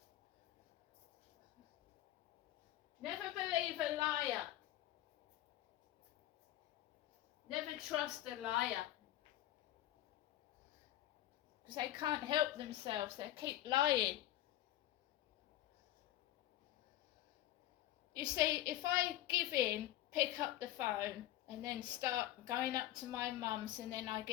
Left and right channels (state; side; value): quieter; right; 14.5 dB